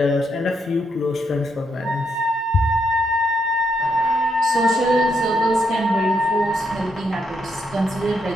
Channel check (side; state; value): both; normal; correlation 0.77